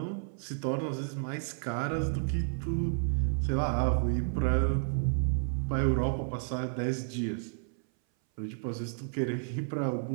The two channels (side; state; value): left; silent; 57 dB below the other